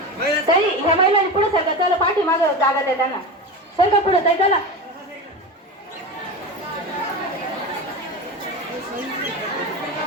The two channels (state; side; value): normal; both; correlation 0.25